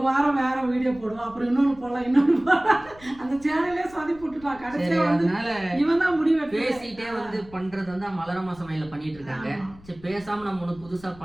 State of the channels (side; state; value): left; noise; rumble, 22 dB below the sound